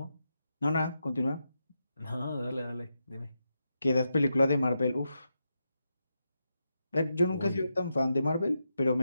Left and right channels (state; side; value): inverted; both; correlation -0.86